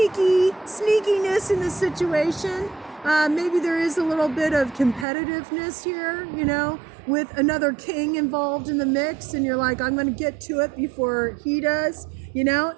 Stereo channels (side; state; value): left; drops out; at 5.1 s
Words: in this situation. Maybe there is a little bit of competitiveness here, you know, with another king involved in the mix, and you're like, I'm going to get to it before he does, you know.